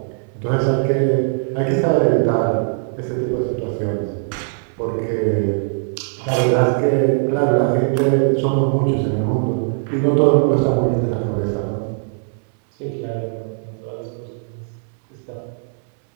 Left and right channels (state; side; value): silent; left; 66 dB below the other